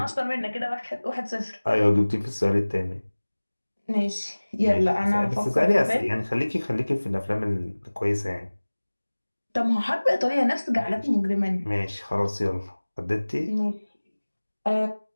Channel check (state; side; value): inverted; both; correlation -1.00